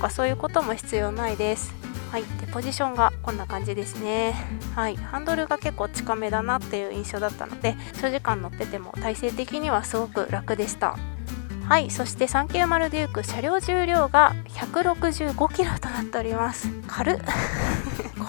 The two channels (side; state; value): right; silent; 59 dB below the other